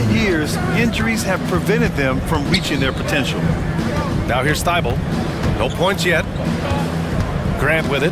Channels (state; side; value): identical; both; correlation 1.00